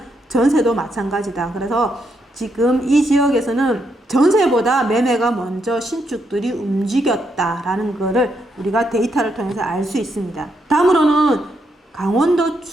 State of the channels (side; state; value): both; normal; correlation 0.79